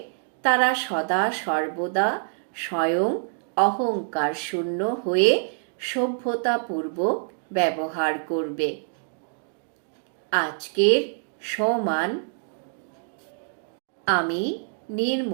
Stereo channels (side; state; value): left; silent; digital silence